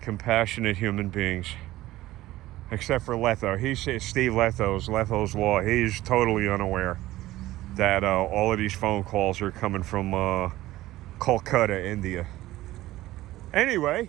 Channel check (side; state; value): left; quieter; 16.3 dB